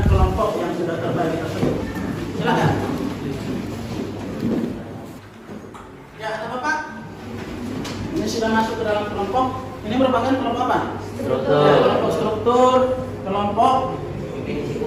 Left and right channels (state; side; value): identical; both; correlation 1.00